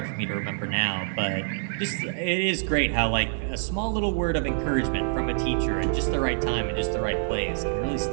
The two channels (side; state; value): left; silent; digital silence